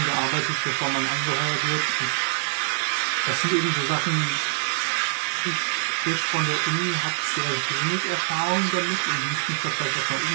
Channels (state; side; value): silent; left; digital silence